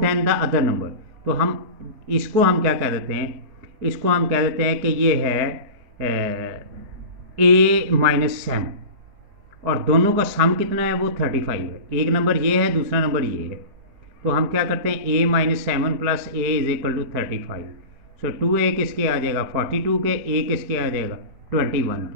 the other number. तो हम इसको हम क्या कह देते हैं, इसको हम कह देते हैं कि ये है a-7, और दोनों का सम कितना है, वो 35 है। एक नंबर ये है, दूसरा नंबर ये है। तो हम क्या करते हैं, a-7 plus a is equal to 35। So 2a किसके आ जाएगा 42 के, a किसके आ जाएगा 21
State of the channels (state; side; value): late; left; 5.0 ms